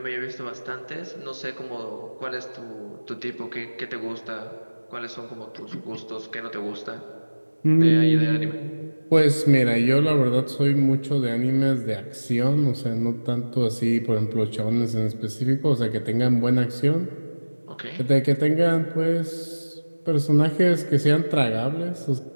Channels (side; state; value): both; inverted; correlation -1.00